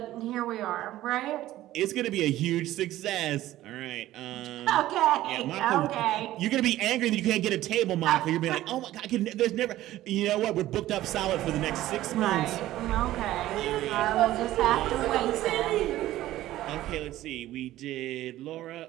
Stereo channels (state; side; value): quieter; left; 14.9 dB